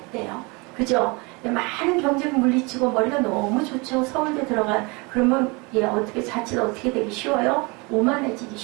했대요. 그죠? 많은 경쟁 물리치고 머리가 너무 좋죠. 서울대 들어간 그러면 어떻게 자칫 어떻게 되기 쉬워요? 오만해지기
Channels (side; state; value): left; quieter; 28.0 dB